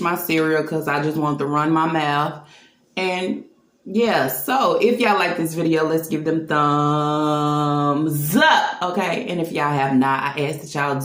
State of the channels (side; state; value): both; identical; correlation 1.00